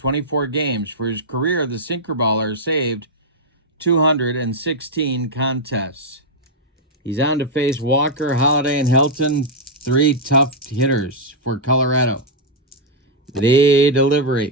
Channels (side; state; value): both; normal; correlation -0.03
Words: games. For his career, the sinker baller saved 216 contests. He's on to face Walker, Holliday, and Helton, 3 tough hitters for Colorado. The